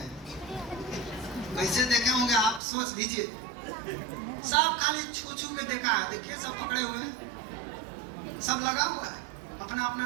कैसे देखे होंगे आप सोच लीजिए। सब खाली छू छू के देखा है। देखिए सब पकड़े हुए हैं, सब लगा हुआ है, अपना अपना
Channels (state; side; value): drops out; left; at 2.6 s